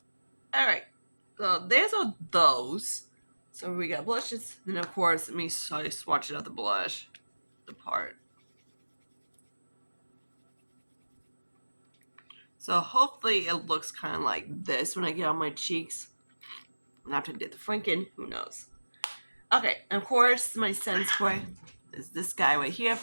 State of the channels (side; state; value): both; inverted; correlation -1.00